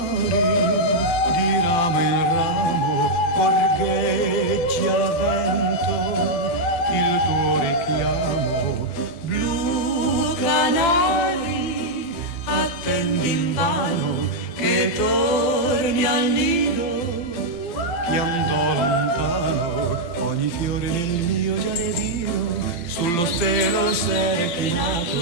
di ramo in ramo, gorgheggi al vento il tuo richiamo. Blu canari, attendi invano che torni al nido, che andò lontano ogni fiore nel mio giardino, sullo stelo s'è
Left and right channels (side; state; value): right; late; 12 ms